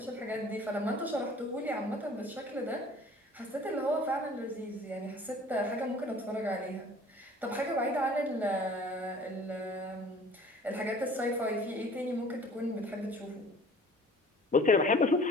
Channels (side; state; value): both; normal; correlation 0.49